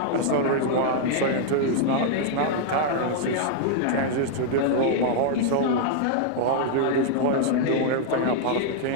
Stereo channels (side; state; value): both; different; correlation -0.01